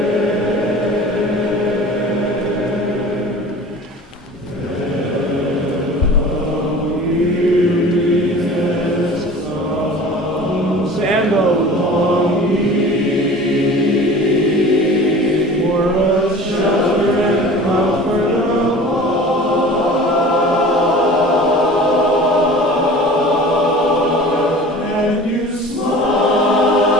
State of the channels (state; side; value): normal; both; correlation 0.41